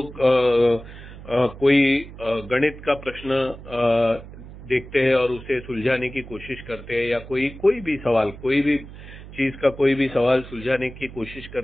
कोई गणित का प्रश्न देखते हैं और उसे सुलझाने की कोशिश करते हैं, या कोई भी सवाल, कोई भी चीज का कोई भी सवाल सुलझाने की कोशिश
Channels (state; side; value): noise; right; hum, 15 dB below the sound